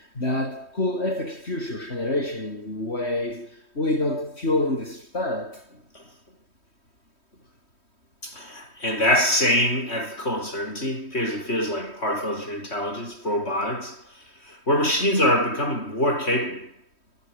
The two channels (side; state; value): right; late; 3.1 ms